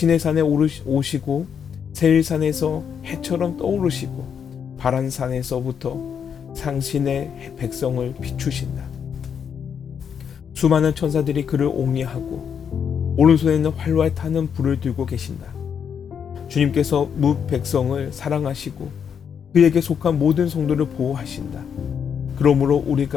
오시고 세일산에서 해처럼 떠오르시고 바란산에서부터 상신의 백성을 비추신다. 수많은 천사들이 그를 옹리하고 오른손에는 활활 타는 불을 들고 계신다. 주님께서 뭇 백성을 사랑하시고 그에게 속한 모든 성도를 보호하신다. 그러므로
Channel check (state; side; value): quieter; right; 7.5 dB